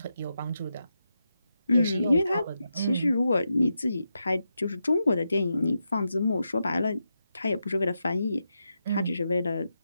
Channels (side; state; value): both; inverted; correlation -0.86